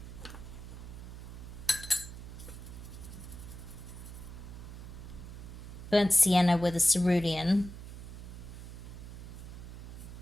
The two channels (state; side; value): noise; right; hum, 11 dB below the sound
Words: burnt sienna with a cerulean